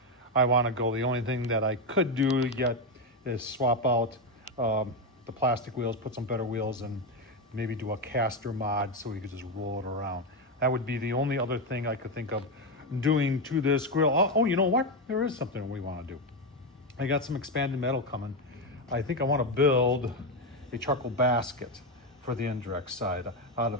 I want to go. The only thing that I could do yet is swap out the plastic wheels, put some better wheels, and maybe do a caster mod so we could just roll it around. That would be the only other thing I could think of doing to this grill. Oh, you know what? There is something we want to do. I got some expanded metal coming. I think I want to build a charcoal basket for the indirect side out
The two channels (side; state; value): both; normal; correlation 0.09